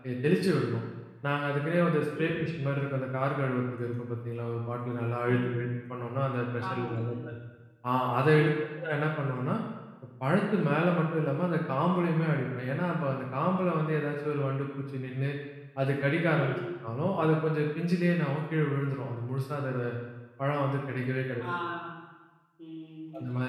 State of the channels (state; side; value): identical; both; correlation 1.00